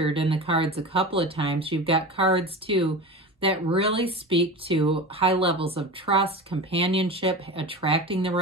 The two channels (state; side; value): normal; both; correlation 0.29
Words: in the cards a couple of times. You've got cards, too, that really speak to high levels of trust, companionship, attracting the